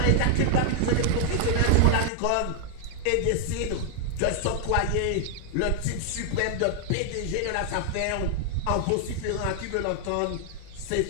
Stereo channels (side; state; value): both; different; correlation 0.00